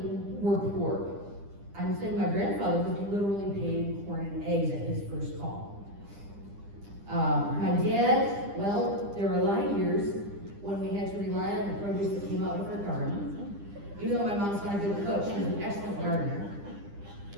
were poor. I'm saying my grandfather was literally paid in corn and eggs at his first call. My dad, well, there were a lot of years when we had to rely on the produce that came out of our garden. Even though my mom's not a good cook, she's an excellent gardener.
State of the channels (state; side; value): late; left; 9.9 ms